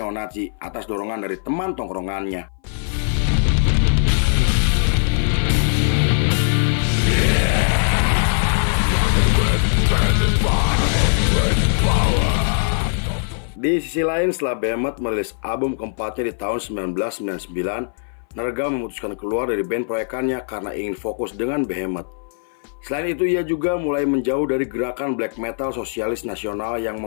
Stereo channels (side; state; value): right; silent; 60 dB below the other